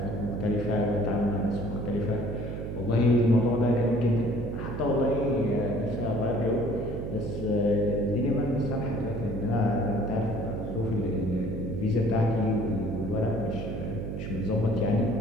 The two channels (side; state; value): right; noise; hum, 5 dB below the sound